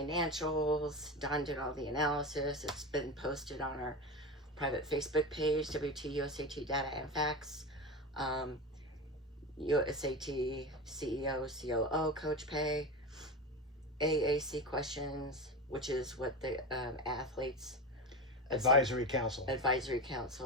Dawn did all the analysis. It's been posted on our private Facebook page, AAU-USAT Data and Facts. USAT CEO, COO Coach Pay. AAC questions, which is what the athletes Advisory Council.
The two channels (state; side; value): normal; both; correlation 0.23